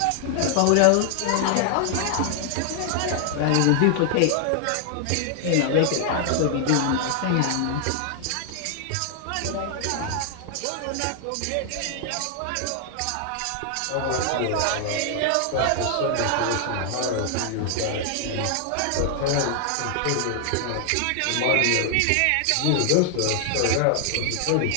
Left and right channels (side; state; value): both; different; correlation 0.00